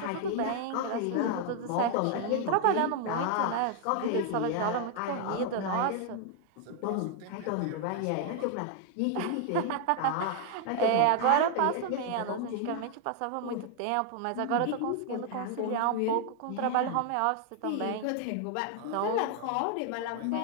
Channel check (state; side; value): different; both; correlation 0.00